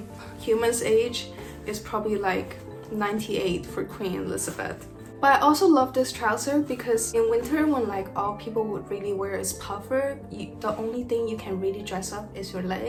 humans' age, it's probably like 98 for Queen Elizabeth. But I also love this trouser because in winter when like all people would really wear is puffer, the only thing you can really dress up is your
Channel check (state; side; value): identical; both; correlation 1.00